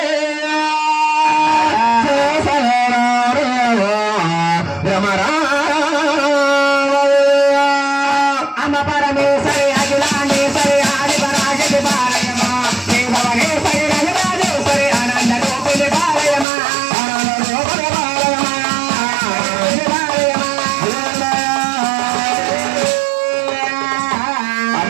అమ్మ పరమేశ్వరి అఖిలాండేశ్వరి ఆది పరాశక్తి పాలయమా భువనేశ్వరి రజరాజేశ్వరి ఆనంద రూపిణి పాలయమా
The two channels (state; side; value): drops out; left; at 16.4 s